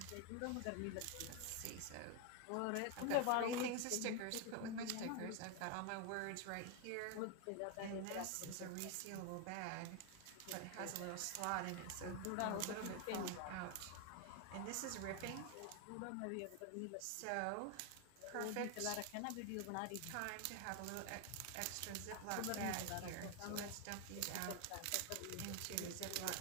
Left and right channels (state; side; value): different; both; correlation 0.01